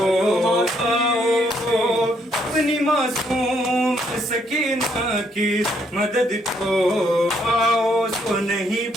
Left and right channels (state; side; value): normal; both; correlation 0.71